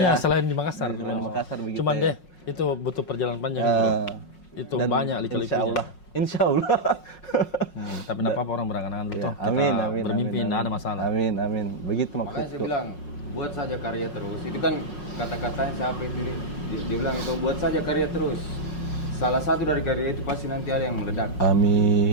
selain di Makassar. Di Makassar begitu. Cuman ya. itu butuh perjalanan panjang bro. Itu Dan banyak lika-likunya. Insya Allah. Tapi enggak apa-apa orang berangan-angan dulu toh. Amin, Kita amin. bermimpi amin, enggak ada masalah. Amin. Begitu Makanya saya maksudku. bilang buat saja karya terus. Itu kan kata-katanya siapa itu dia bilang itu buat saja karya terus. salah satu dari karya itu pasti nanti ada yang meledak.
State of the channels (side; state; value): right; late; 5.5 ms